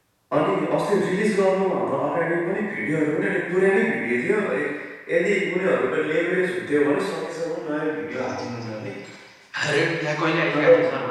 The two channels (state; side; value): identical; both; correlation 1.00